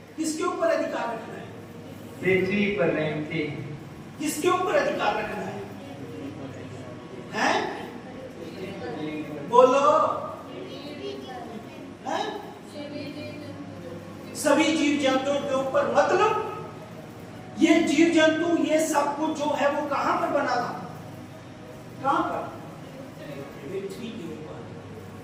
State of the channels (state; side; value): identical; both; correlation 1.00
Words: किसके ऊपर अधिकार रखना है? पृथ्वी पर रेंगते। किसके ऊपर अधिकार रखना है? हैं? बोलो, हैं? सभी जीव जंतुओं के ऊपर। मतलब ये जीव जंतु, ये सब कुछ जो है वो कहां पर बना था? कहां पर? पृथ्वी के ऊपर,